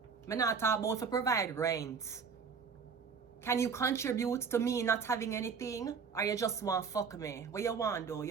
I not talk about to provide rent. Can you contribute to me not having anything? Or you just want fuck me? What you want though?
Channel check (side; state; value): left; quieter; 5.9 dB